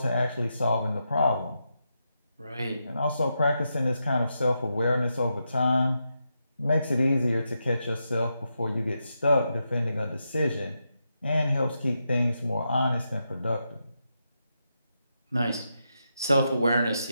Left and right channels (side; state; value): both; inverted; correlation -0.85